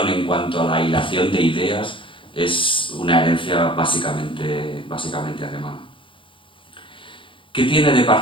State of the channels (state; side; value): late; right; 0.25 ms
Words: en cuanto a la hilación de ideas es una herencia básicamente alemana. ¿Qué tiene de